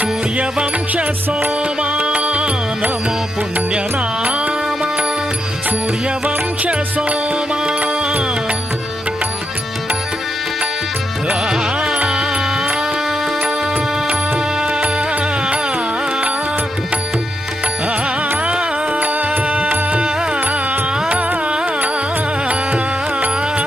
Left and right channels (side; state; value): both; normal; correlation 0.82